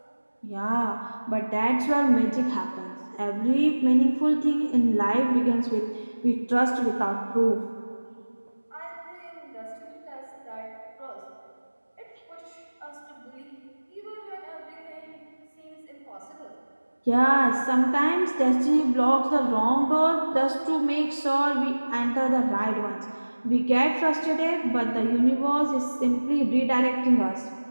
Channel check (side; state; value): both; inverted; correlation -1.00